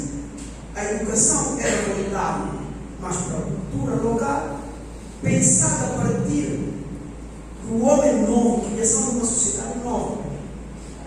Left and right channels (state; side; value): identical; both; correlation 1.00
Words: a educação era voltada mais para a cultura local, pensada a partir do homem novo, criação de uma sociedade nova.